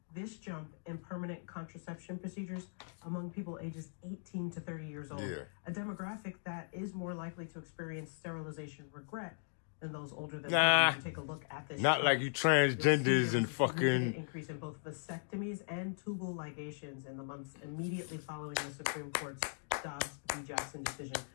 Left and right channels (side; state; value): right; silent; digital silence